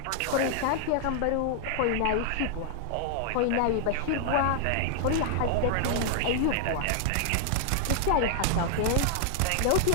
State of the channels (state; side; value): different; both; correlation 0.00